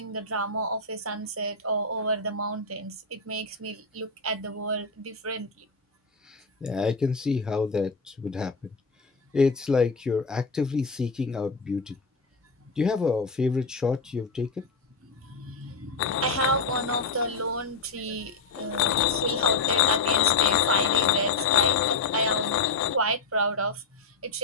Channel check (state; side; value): quieter; right; 4.0 dB